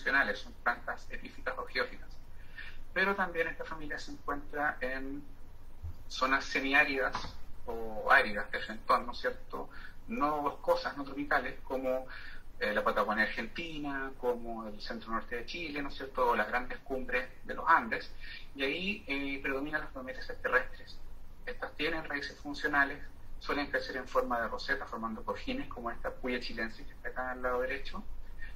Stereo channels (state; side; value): identical; both; correlation 1.00